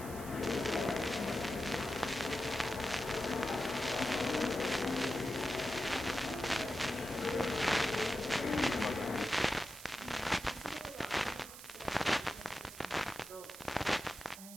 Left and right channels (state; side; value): noise; right; hiss, 14 dB below the sound